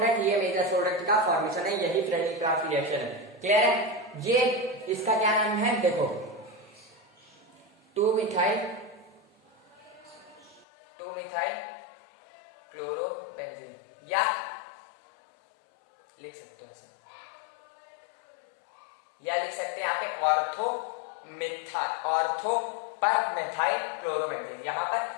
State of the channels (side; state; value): right; drops out; at 10.7 s